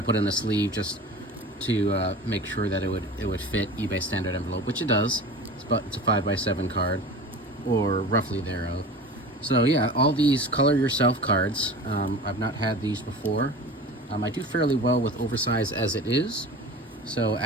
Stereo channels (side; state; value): both; normal; correlation 0.36